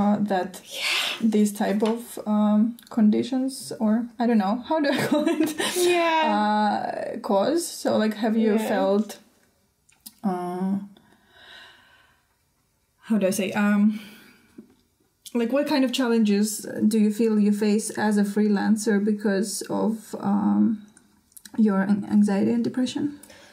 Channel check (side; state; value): both; identical; correlation 1.00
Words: these type of conditions, or I don't know, how do I call it? Cause. So like, have you felt, how do I say, like what kind of challenges do you feel you face as a freelancer because of your anxiety and depression?